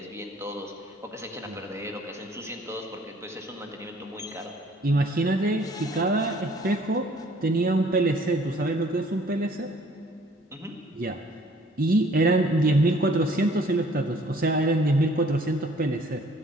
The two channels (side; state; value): both; normal; correlation 0.57